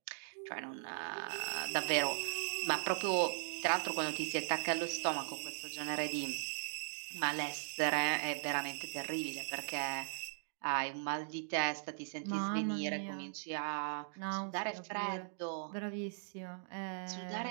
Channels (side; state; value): left; silent; digital silence